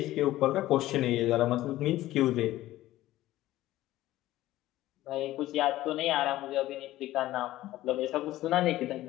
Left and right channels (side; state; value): right; quieter; 15.5 dB